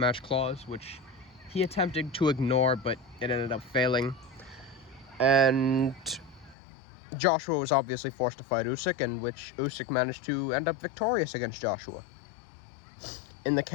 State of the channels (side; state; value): right; drops out; at 6.6 s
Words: clause, which he attempted to ignore, but it ended up failing. And Joshua was obviously forced to fight Usyk, in which Usyk managed to end up victorious against Joshua. In the